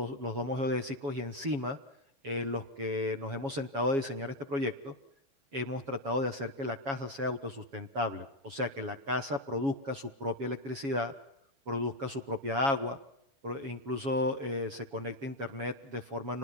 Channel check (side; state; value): left; late; 7.2 ms